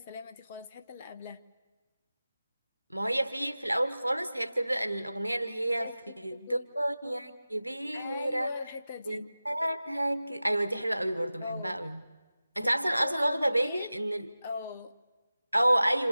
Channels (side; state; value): both; inverted; correlation -0.96